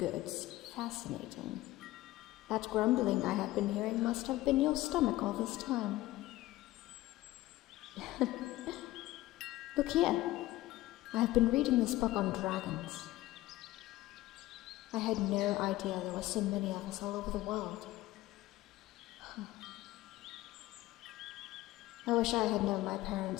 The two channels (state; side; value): quieter; right; 16.9 dB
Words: fascinating. That grumbling I have been hearing must have been your stomach all this time. Look here. I have been reading this book on dragons. I had no idea there were so many of us all over the world. I wish I had known my